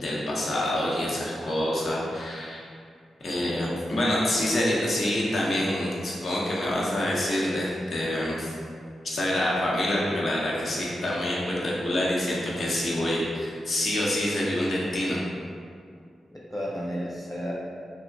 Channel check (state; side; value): normal; both; correlation 0.88